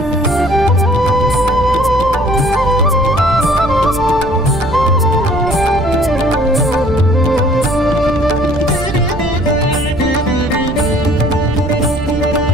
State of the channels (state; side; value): noise; right; rumble, 9 dB below the sound